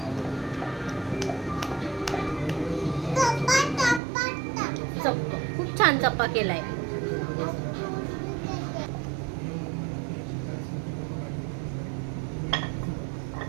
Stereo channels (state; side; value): drops out; left; at 4.0 s